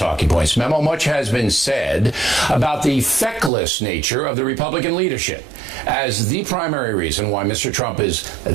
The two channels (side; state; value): left; drops out; at 3.5 s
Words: Points memo. Much has been said about the feckless nature of the Republican leadership as the primary reason why Mr. Trump is